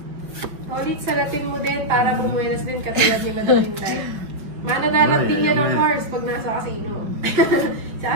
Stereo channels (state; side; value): late; left; 5.4 ms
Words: Ulit salatin mo din para bumuenas din katulad ni Madam Inday. Mananalat din yan ng horse pag nasa casino. Sa